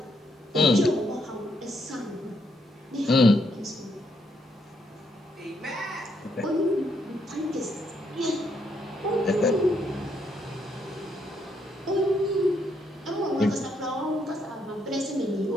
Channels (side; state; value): both; normal; correlation 0.75